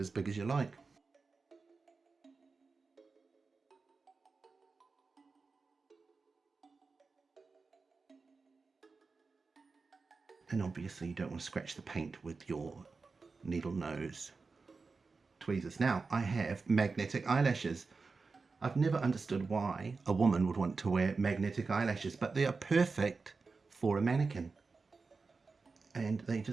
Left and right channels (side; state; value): left; quieter; 4.3 dB